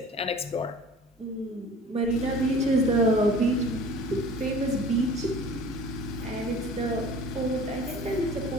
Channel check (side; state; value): both; normal; correlation 0.44